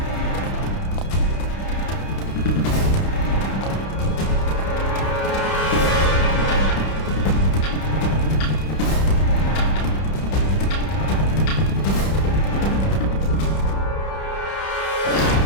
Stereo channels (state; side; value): late; right; 31 ms